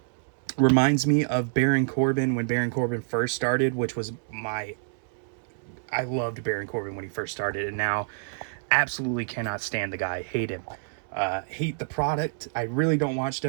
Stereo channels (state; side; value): silent; left; 60 dB below the other